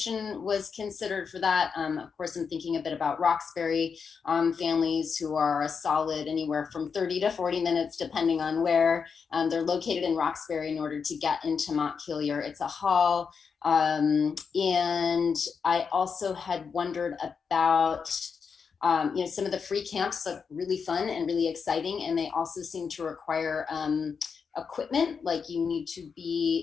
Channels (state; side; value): quieter; right; 5.9 dB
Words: was considered for that. Of course, I'm thinking a bit about Roxbury families who are a solid anywhere from 30 to 40 minutes, depending on where they're located in Roxbury in order to get into Montpelier. It's a haul. And I also had wondered about some of the free camps look really fun and really exciting, and they also seem to require equipment, like you need to